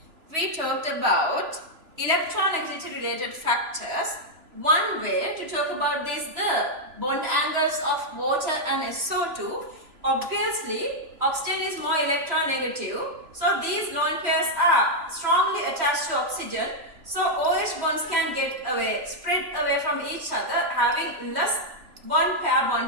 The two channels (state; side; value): late; left; 3.2 ms